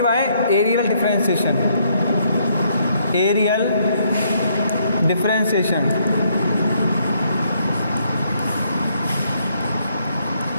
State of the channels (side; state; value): both; inverted; correlation -0.71